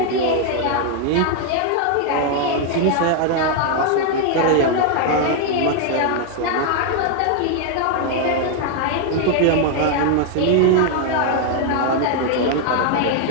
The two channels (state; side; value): different; both; correlation 0.00